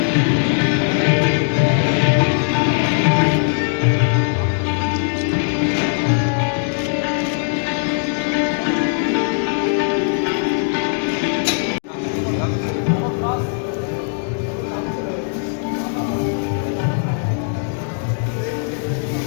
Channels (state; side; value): silent; right; digital silence